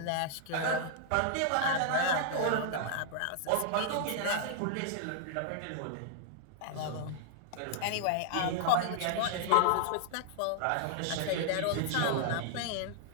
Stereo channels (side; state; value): both; different; correlation -0.01